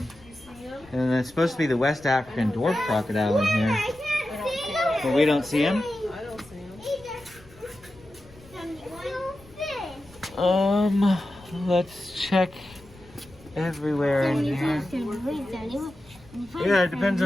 And it's supposed to be the West African dwarf crocodile in here. But we don't see him? I don't see him. Let's check everywhere in here. Yeah, it depends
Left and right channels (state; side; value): noise; left; rumble, 24 dB below the sound